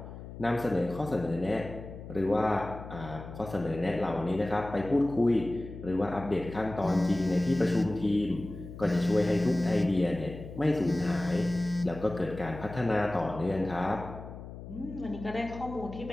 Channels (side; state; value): left; noise; hum, 12 dB below the sound